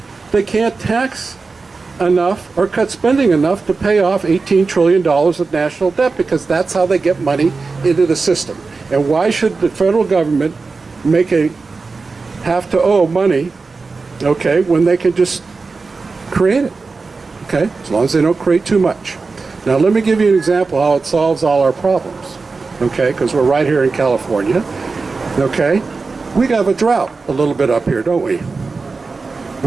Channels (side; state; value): left; quieter; 4.2 dB